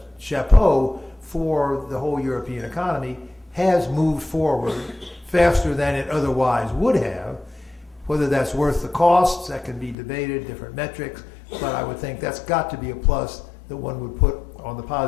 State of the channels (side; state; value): right; drops out; at 10.0 s